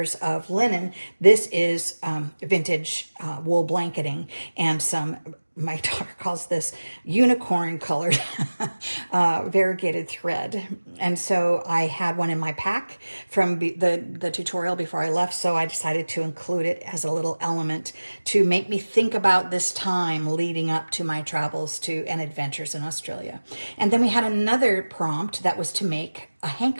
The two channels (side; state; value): both; inverted; correlation -1.00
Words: of linen. This is vintage wool blanketing and some, my daughter calls this unicorn colored variegated thread. And so I had one in my pack from the tutorial before I left. So I decided to include it as a little element to make me think about this time leading up to my travels and adventures in Australia. And then we had another prompt that was to make a